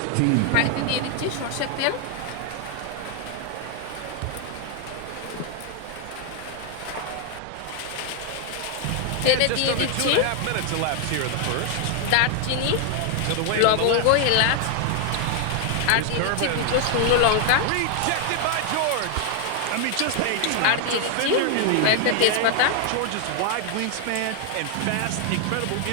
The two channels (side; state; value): both; different; correlation 0.00